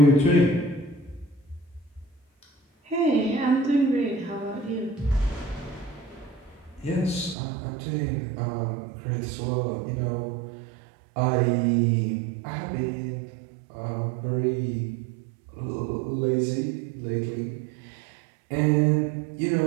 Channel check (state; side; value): drops out; left; at 7.4 s